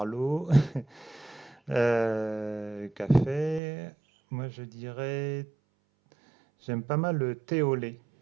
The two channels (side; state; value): left; drops out; at 3.6 s